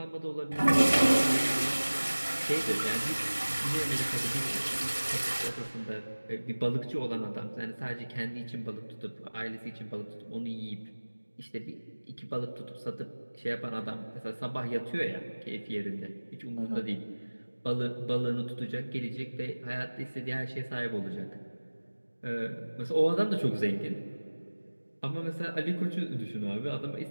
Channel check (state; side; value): inverted; both; correlation -1.00